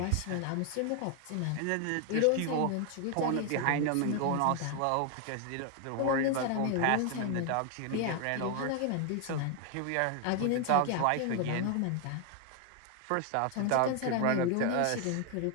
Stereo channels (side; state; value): both; different; correlation 0.00